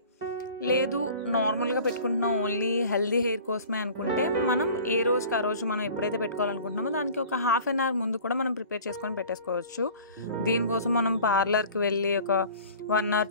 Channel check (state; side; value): inverted; both; correlation -0.45